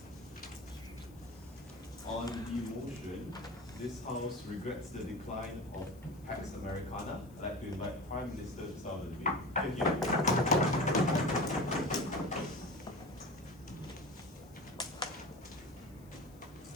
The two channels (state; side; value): noise; left; hiss, 27 dB below the sound